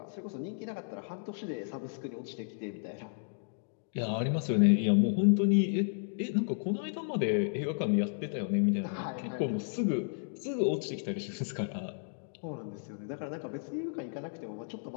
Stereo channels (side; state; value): right; silent; digital silence